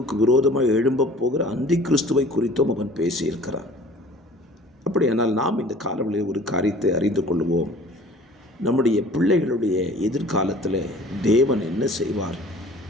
விரோதமாக எழும்பப் போகிற அந்தி கிறிஸ்துவை குறித்தும் அவன் பேசியிருக்கிறான். அப்படியானால் நாம் இந்த காலவெளியில் ஒரு காரியத்தை அறிந்து கொள்வோம். நம்முடைய பிள்ளைகளுடைய எதிர்காலத்தில் தேவன் என்ன செய்வார்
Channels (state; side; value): normal; both; correlation 0.48